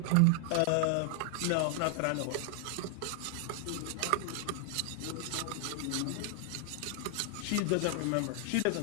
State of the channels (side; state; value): both; different; correlation 0.00